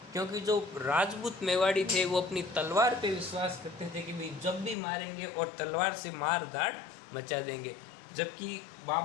क्योंकि जो राजपूत मेवाड़ी थे वो अपनी तलवार पे विश्वास करते थे कि भाई जब भी मारेंगे और तलवार से मार धाड़ मचा देंगे, जबकि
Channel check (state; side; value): drops out; right; at 4.8 s